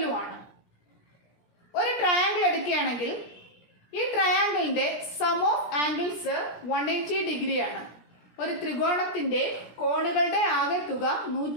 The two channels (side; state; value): right; late; 17 ms